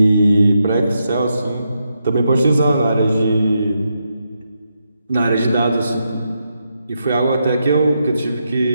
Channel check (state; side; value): inverted; both; correlation -0.83